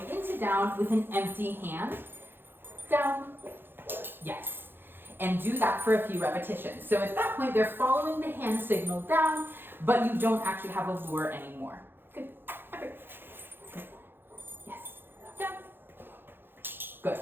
into down with an empty hand. Down. Yes. And do that for a few repetitions. So at that point, they're following the hand signal down, but you don't actually have a lure anymore. Good. Okay. Good. Yes. Down. Good.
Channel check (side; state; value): left; late; 0.10 ms